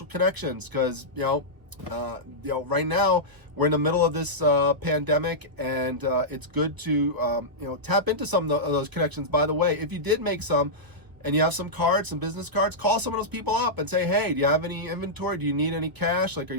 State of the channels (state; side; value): late; left; 1.0 ms